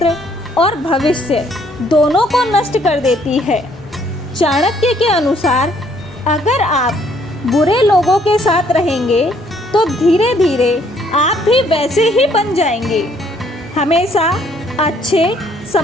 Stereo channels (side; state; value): both; normal; correlation 0.65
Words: और भविष्य दोनों को नष्ट कर देती है। चाणक्य के अनुसार अगर आप बुरे लोगों के साथ रहेंगे तो धीरे धीरे आप भी वैसे ही बन जाएंगे। हमेशा अच्छे,